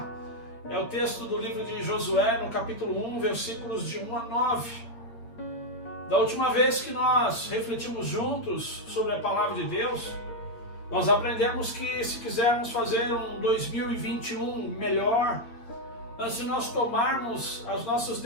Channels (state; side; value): late; right; 8.5 ms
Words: é o texto do livro de Josué, no capítulo 1, versículos de 1 a 9. Da última vez que nós refletimos juntos sobre a palavra de Deus, nós aprendemos que se quisermos fazer um 2021 melhor, antes de nós tomarmos as nossas